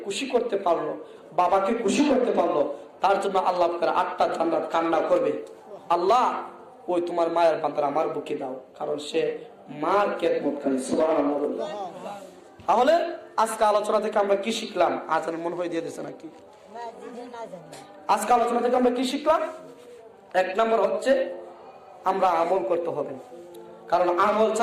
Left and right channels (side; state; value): both; identical; correlation 1.00